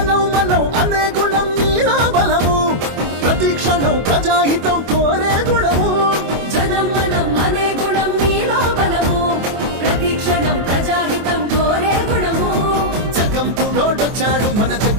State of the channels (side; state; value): left; late; 24 ms